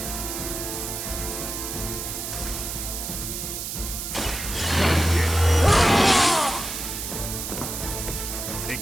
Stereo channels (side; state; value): right; noise; hiss, 5 dB below the sound